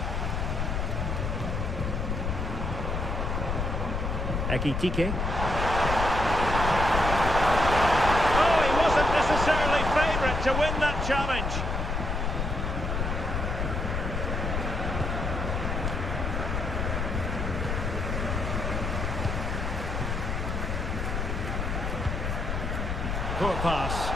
Ekitike. Oh, he wasn't necessarily favourite to win that challenge. Poor pass.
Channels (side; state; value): left; noise; rumble, 1 dB below the sound